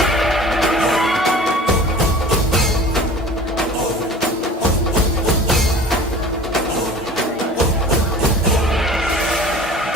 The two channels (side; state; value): both; normal; correlation 0.43